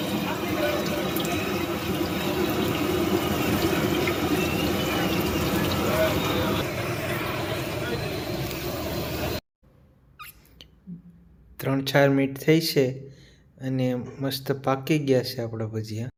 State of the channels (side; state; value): both; identical; correlation 1.00